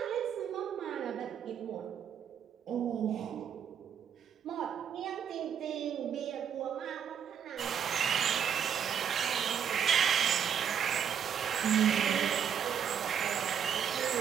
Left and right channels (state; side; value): quieter; left; 8.2 dB